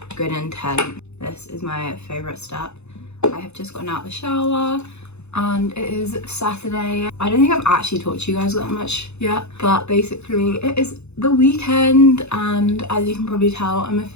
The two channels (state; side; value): late; right; 0.81 ms